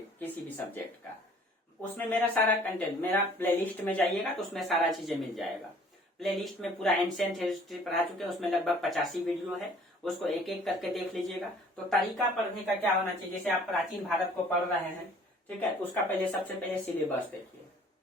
किसी भी सब्जेक्ट का, उसमें मेरा सारा कंटेंट, मेरा प्लेलिस्ट में जाइएगा तो उसमें सारा चीजें मिल जाएगा। प्लेलिस्ट में पूरा एंशिएंट हिस्ट्री पढ़ा चुके हैं, उसमें लगभग 85 वीडियो है, उसको एक एक करके देख लीजिएगा। तो तरीका पढ़ने का क्या होना चाहिए, जैसे आप प्राचीन भारत को पढ़ रहे हैं, ठीक है, उसका पहले सबसे पहले सिलेबस देखिए,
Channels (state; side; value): normal; both; correlation 0.54